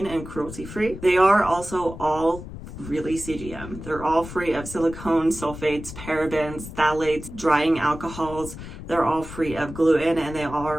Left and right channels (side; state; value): left; noise; rumble, 12 dB below the sound